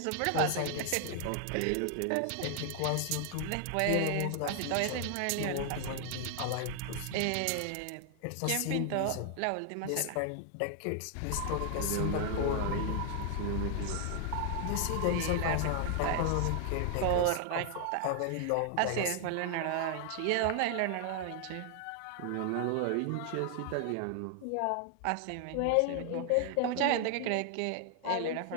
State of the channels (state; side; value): different; both; correlation 0.00